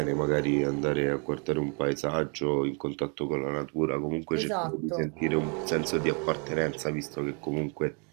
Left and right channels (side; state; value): left; quieter; 37.7 dB